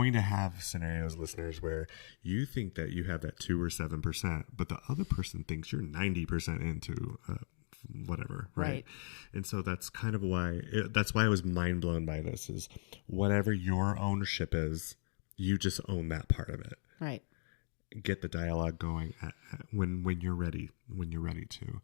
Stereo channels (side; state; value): right; silent; digital silence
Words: to have scenarios, listeners, where you think that you have that 2 or 7%, but the other person thinks you're 90% into whatever, right? And so that's kind of why, that's why I was mind blown by this, is whatever your ownership is, you just own that part of it. Right. Get the dialogue going when you're ready to.